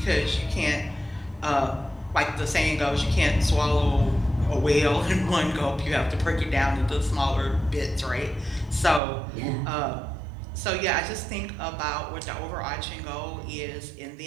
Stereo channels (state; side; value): drops out; left; at 9.0 s